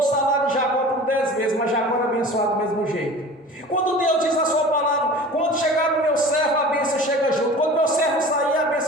salário de Jacó por 10 vezes, mas Jacó era abençoado do mesmo jeito. Quando Deus diz a sua palavra, quando chegar no meu servo, a bênção chega junto. Quando meu servo sair, a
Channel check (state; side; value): normal; both; correlation 0.39